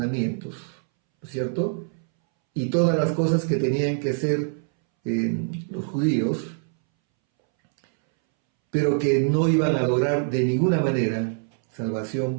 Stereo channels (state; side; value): silent; left; 63 dB below the other